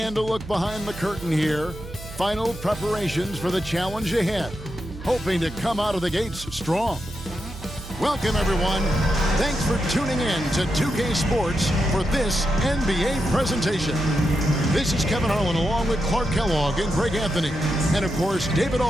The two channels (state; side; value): noise; right; hum, 13 dB below the sound